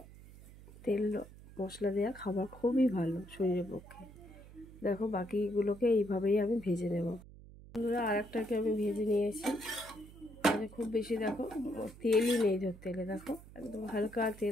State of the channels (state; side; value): noise; right; hum, 19 dB below the sound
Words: তেল মশলা দেওয়া খাবার খুবই ভালো শরীরের পক্ষে। দেখো বাকিগুলোকে এইভাবেই আমি ভেজে নেব। বন্ধুরা আর একটাকে আমি ভেজে নিয়েছি, মানে খুব বেশি দেখো তেলই নেই তেলে, দেখো একদম হালকা